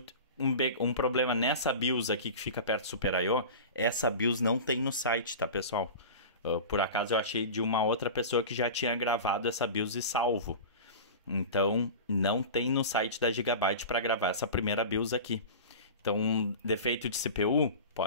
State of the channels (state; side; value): inverted; both; correlation -0.32